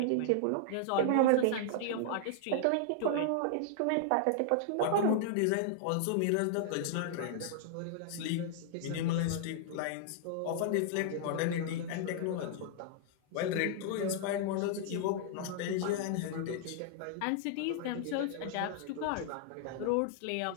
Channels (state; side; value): different; both; correlation -0.01